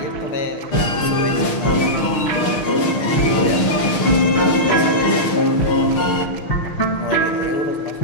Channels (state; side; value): late; right; 6.5 ms